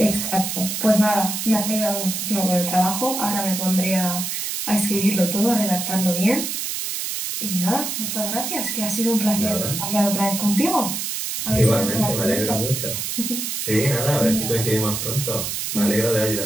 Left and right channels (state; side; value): noise; right; hiss, 3 dB below the sound